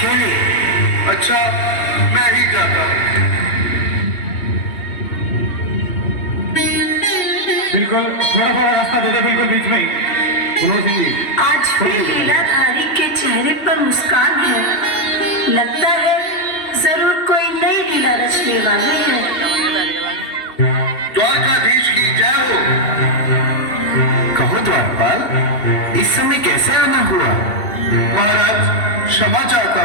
अच्छा, मैं ही जाता हूँ। बिल्कुल, थोड़ा थोड़ा रास्ता दे दे, बिल्कुल बीच में ही। मनोज सिंह जी, आज भी लीलाधारी के चेहरे पर मुस्कान है। लगता है जरूर कोई नई लीला रचने वाले हैं। द्वारकाधीश की जय हो। कहो द्वारपाल, इस समय कैसे आना हुआ? महाराज, क्षमा चाहता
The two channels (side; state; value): right; late; 3.1 ms